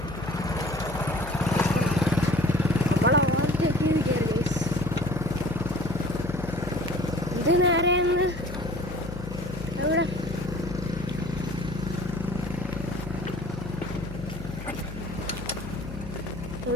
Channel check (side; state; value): left; noise; hum, 10 dB below the sound